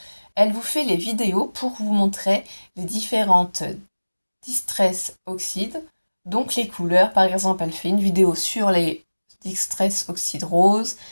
Elle vous fait les vidéos pour vous montrer les différentes distress oxydes, donc les couleurs. Par exemple, elle fait une vidéo sur les distress oxydes roses,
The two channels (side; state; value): both; inverted; correlation -1.00